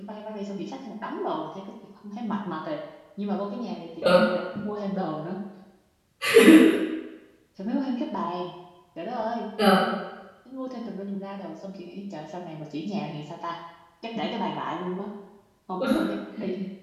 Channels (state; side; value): identical; both; correlation 1.00